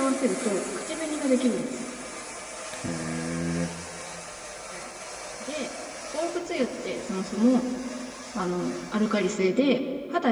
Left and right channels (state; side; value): identical; both; correlation 1.00